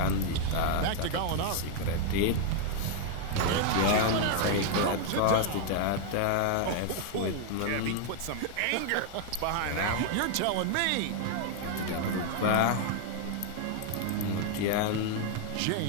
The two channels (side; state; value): both; different; correlation 0.00